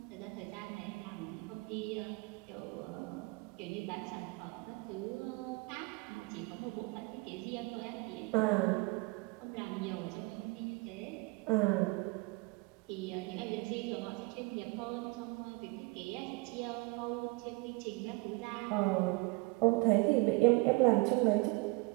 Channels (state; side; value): quieter; left; 25.5 dB